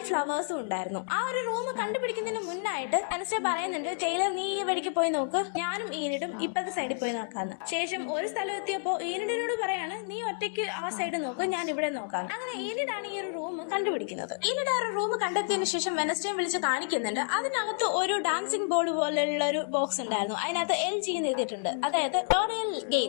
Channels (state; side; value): silent; right; digital silence